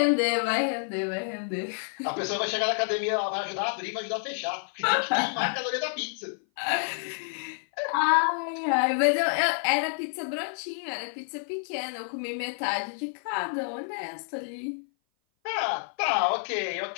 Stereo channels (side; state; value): right; silent; 57 dB below the other